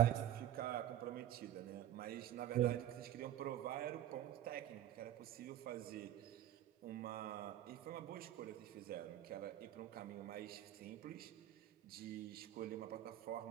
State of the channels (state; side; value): quieter; left; 12.5 dB